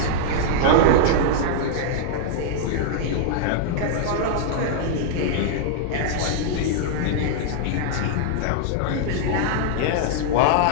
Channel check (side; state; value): both; different; correlation -0.01